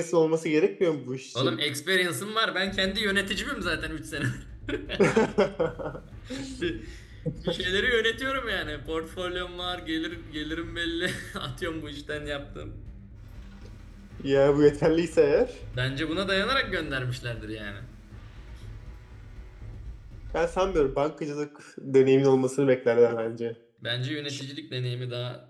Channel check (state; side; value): identical; both; correlation 1.00